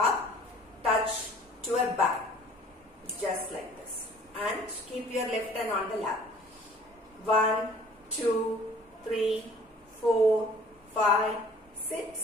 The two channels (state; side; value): normal; both; correlation 0.52